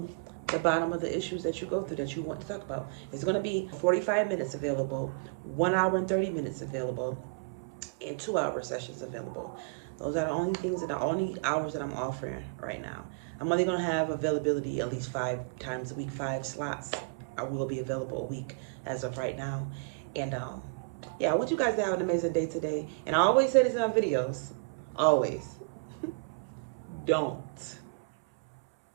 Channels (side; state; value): left; quieter; 34.5 dB